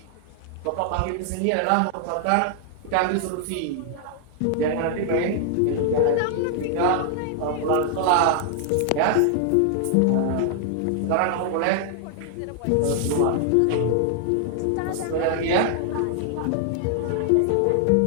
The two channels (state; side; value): different; both; correlation 0.00